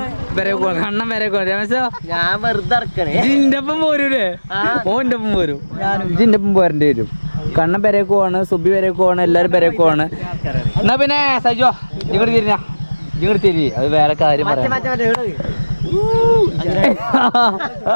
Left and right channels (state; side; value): inverted; both; correlation -1.00